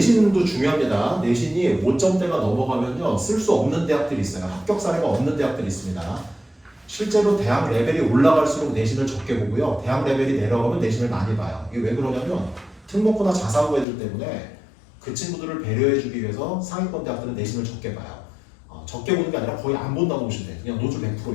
중요합니다. 내신이 5점대가 넘어가면요 쓸 수 없는 대학들이 있어요. 합격 사례가 없는 대학들이 있습니다. 실제로 대학 레벨이 올라갈수록 내신을 적게 보고요. 대학 레벨이 내려가면 내신을 많이 봐요. 이게 왜 그러냐면 특목고나 자사고 애들 때문에 그 친구들을 배려해주기 위해서 상위권 대학들은 내신을 적게 봐요. 적게 보는 게 아니라 거의 안 본다고 보시면 돼요. 그냥 노출 100%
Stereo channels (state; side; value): drops out; right; at 13.9 s